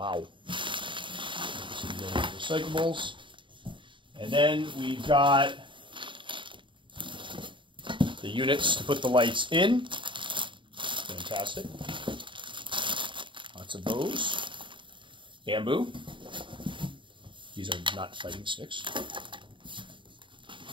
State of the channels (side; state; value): left; late; 0.24 ms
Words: Recyclables. And then we've got the units to put the lights in. Fantastic. Lots of those. Bamboo. These are not fighting sticks.